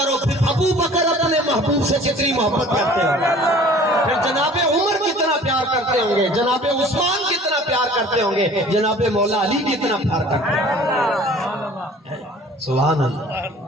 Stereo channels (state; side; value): normal; both; correlation 0.48